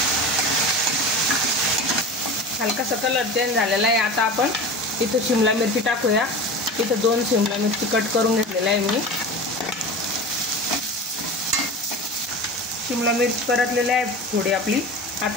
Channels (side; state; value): both; normal; correlation 0.32